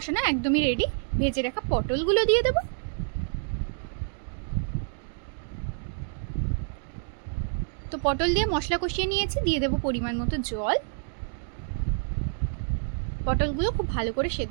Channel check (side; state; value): left; silent; digital silence